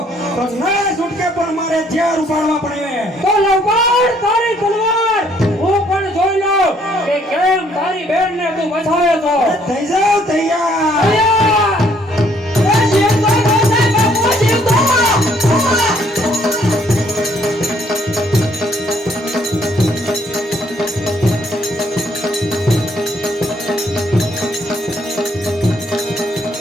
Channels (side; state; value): both; normal; correlation 0.65